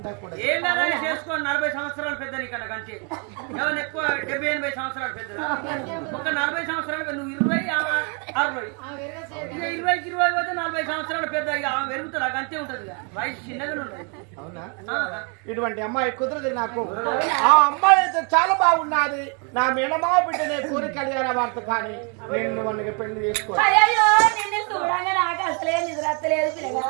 ఏంటనే చేసుకోండి, 40 సంవత్సరాలు పెద్ద నీకన్నా కంటే ఎవరు ఎక్కువ 70-80 సంవత్సరాలు పెద్ద. ఒక 40 సంవత్సరాలు నువ్వు 20-60 20-20 పోతే 40 సంవత్సరాలు పెద్ద. ఇక పెరుగుతుంది, అంతే ఉంటది, వయసు చిన్నగానే ఉంటది. అవునా? ఇటువంటి అమ్మాయి కుదరదు నాకు. ఆ అమ్మాయి అయితే చాలా బాగున్నది, నా మేనమా బిడ్డనే కోరి కళ్యాణ వార్త, కానీ నేను మనకి పెళ్లి చేసుకోవాలి.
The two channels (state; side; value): quieter; left; 36.3 dB